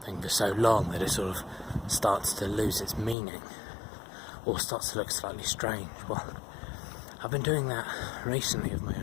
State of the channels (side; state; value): right; drops out; at 3.2 s